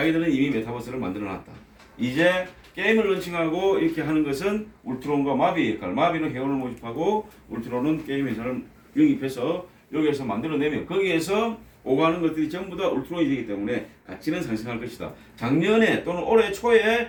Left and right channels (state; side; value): identical; both; correlation 1.00